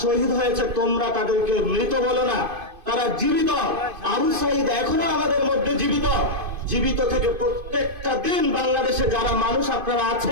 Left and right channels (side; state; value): left; late; 2.5 ms